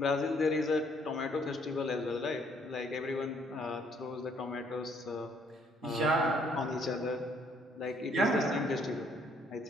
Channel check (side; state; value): both; normal; correlation 0.66